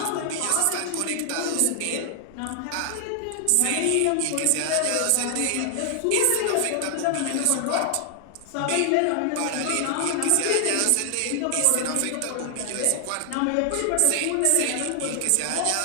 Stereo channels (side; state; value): both; different; correlation 0.00